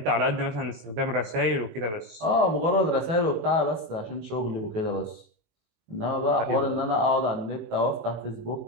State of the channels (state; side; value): late; left; 18 ms